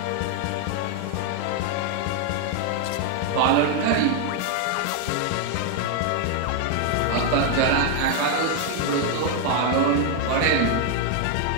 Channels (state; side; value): different; both; correlation 0.00